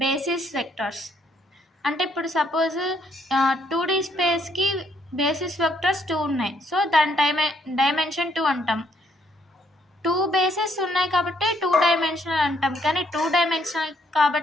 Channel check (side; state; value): both; normal; correlation 0.70